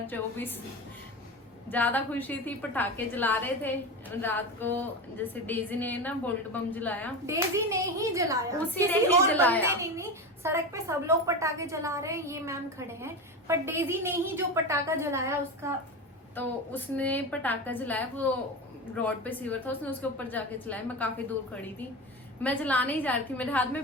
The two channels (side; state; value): both; normal; correlation 0.23